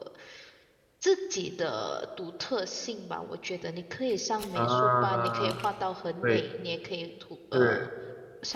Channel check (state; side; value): identical; both; correlation 1.00